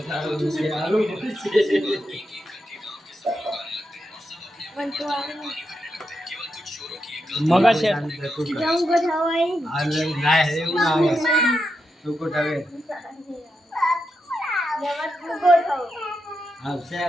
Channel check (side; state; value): both; normal; correlation 0.85